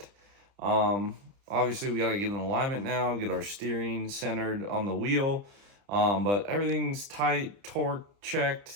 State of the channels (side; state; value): left; late; 30 ms